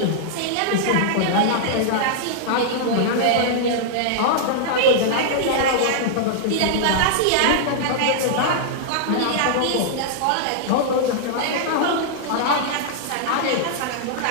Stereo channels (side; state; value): both; different; correlation -0.01